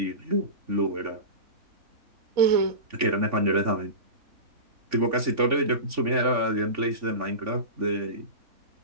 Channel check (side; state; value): left; late; 3.5 ms